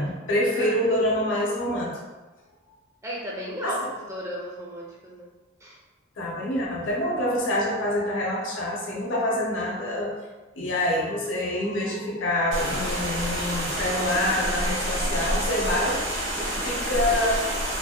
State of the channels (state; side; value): normal; both; correlation 0.20